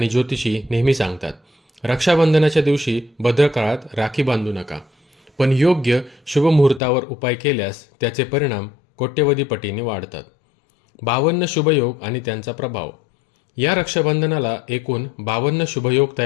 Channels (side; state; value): right; drops out; at 6.8 s